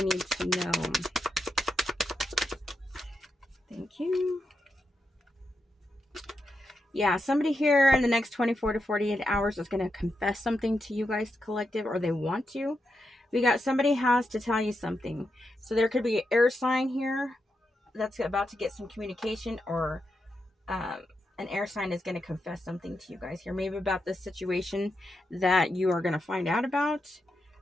need to know? Thank you. Yeah, somebody here in the next 24 to 48 hours is going to confess something to you guys, collective, or they want to. We got somebody has to tell you something. So there could be an air sign here that's about to get some communication, or an air sign is going to confess something to you guys here, maybe about this situation that you are going to find out about.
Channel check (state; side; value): normal; both; correlation 0.85